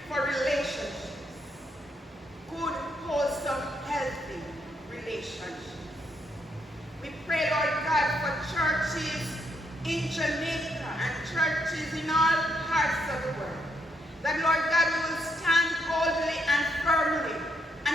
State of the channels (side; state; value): both; normal; correlation 0.76